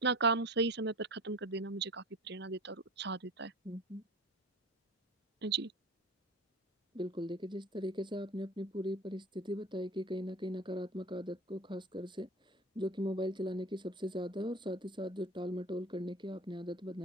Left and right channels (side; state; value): both; normal; correlation 0.35